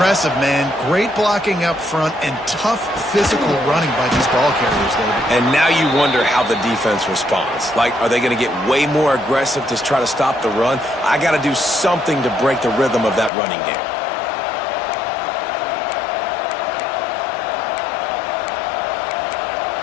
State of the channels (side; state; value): right; drops out; at 13.3 s